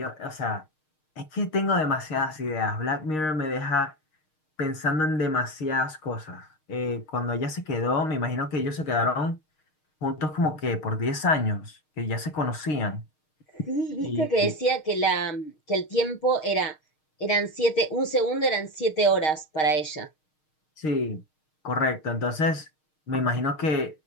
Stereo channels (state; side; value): late; right; 6.5 ms